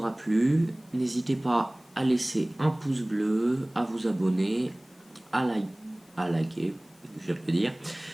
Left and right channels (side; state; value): left; noise; hiss, 29 dB below the sound